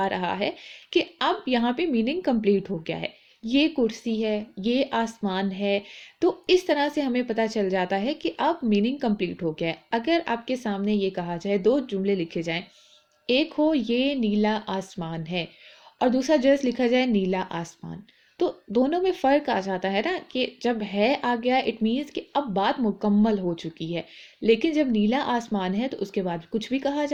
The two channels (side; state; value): both; identical; correlation 1.00